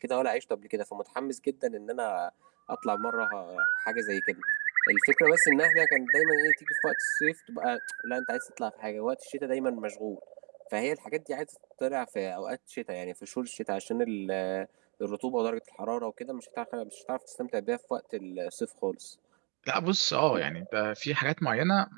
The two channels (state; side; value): quieter; left; 33.7 dB